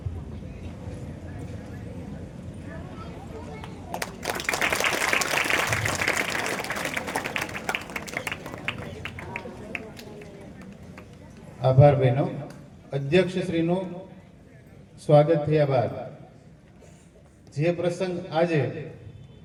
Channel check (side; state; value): both; identical; correlation 1.00